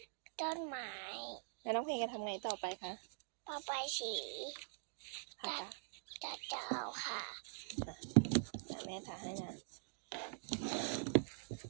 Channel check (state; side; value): silent; left; digital silence